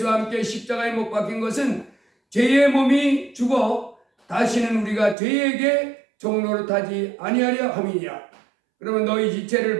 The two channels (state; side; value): drops out; left; at 5.2 s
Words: 함께 십자가에 못 박힌 것은 죄의 몸이 죽어 다시는 우리가 죄에게 종노릇하지 아니하려 함이니라. 그러면 너희 지체를